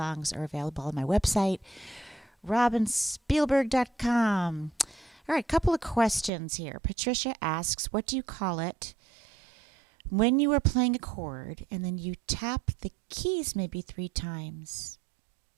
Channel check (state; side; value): drops out; left; at 6.3 s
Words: are available on my website, robinspielberg.com. All right, couple of questions here. Patricia asks, what do you call it when you are playing a chord and then you tap the keys maybe 3 times?